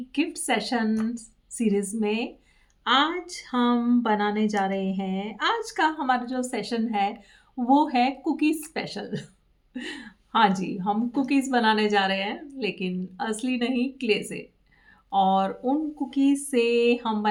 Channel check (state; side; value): identical; both; correlation 1.00